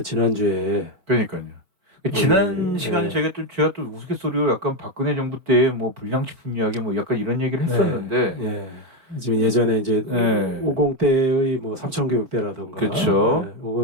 그러니까요. 지난 시간에 제가 또 우스갯소리로 약간 박근혜 정부 때 뭐 불량식품 이야기 뭐 약간 이런 얘기를 했었는데 지금 예전에 이제 네. 50대의 뭐 삼천교육대라든가 그렇죠.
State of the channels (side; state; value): left; late; 4.3 ms